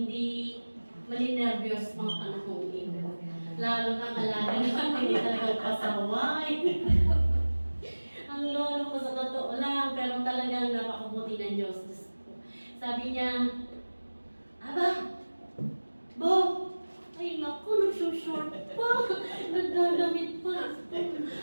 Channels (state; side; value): inverted; both; correlation -1.00